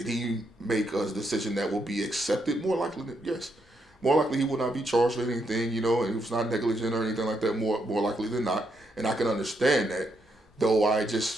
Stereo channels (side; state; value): both; normal; correlation 0.79